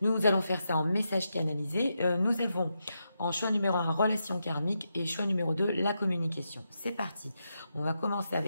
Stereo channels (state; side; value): inverted; both; correlation -0.85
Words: Nous allons faire ça en message canalisé. Nous avons en choix numéro 1, relation karmique, et choix numéro 2, la communication. C'est parti. On va commencer